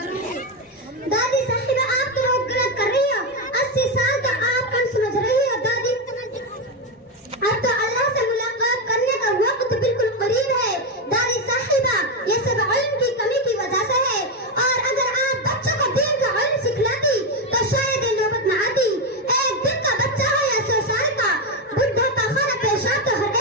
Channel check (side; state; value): both; normal; correlation 0.08